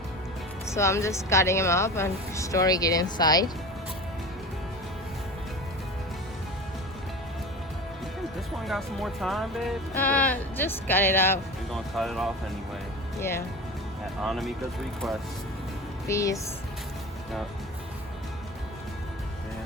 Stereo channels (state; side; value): normal; both; correlation 0.31